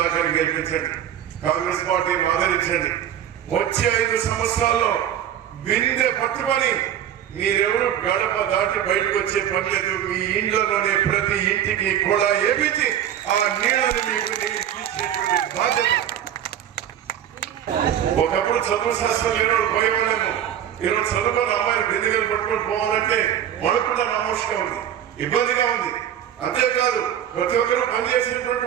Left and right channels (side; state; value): left; quieter; 10.3 dB